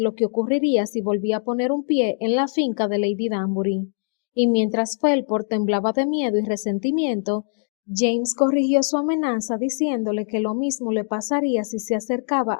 que ocurriría si volvía a poner un pie en la finca de Lady Danbury. Y mientras Felport temblaba de miedo y resentimiento, James corrigió su amenaza diciéndole que lo mismo le pasaría si se acercaba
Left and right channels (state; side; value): silent; right; digital silence